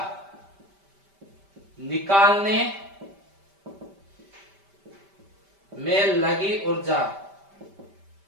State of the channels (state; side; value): late; left; 5.1 ms